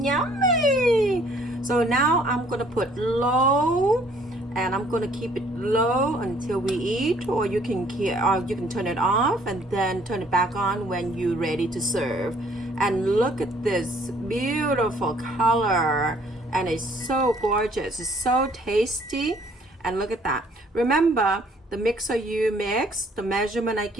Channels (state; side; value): normal; both; correlation 0.61